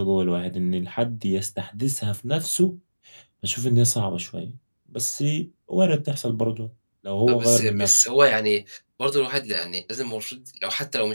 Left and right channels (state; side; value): inverted; both; correlation -1.00